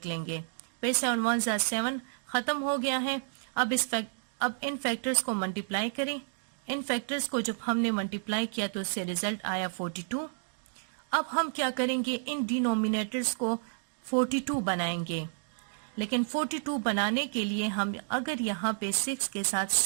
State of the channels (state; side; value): silent; left; digital silence